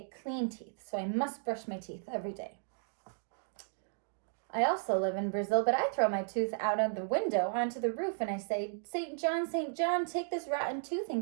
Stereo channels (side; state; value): left; silent; digital silence